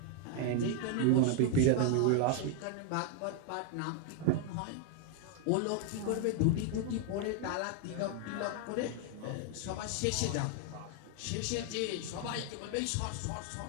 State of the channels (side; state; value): both; different; correlation 0.01